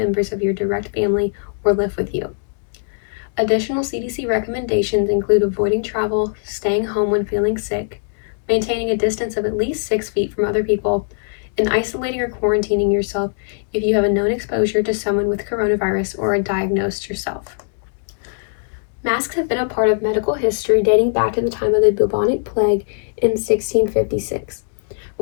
of your direct family or live with you. Additional CDC recommendations include avoiding travel, staying home when feeling sick, maintaining a distance of at least 6 feet from other people, and isolating or quarantining yourself if you have a known exposure to someone with coronavirus or are diagnosed yourself. Masks have been a part of medical history dating back to the time of the bubonic plague in 1656.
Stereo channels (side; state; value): right; silent; digital silence